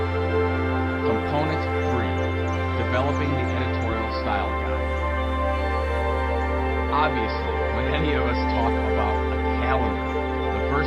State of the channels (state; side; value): identical; both; correlation 1.00